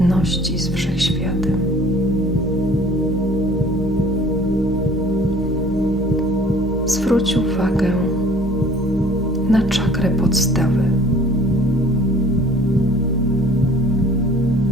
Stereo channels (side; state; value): both; normal; correlation 0.52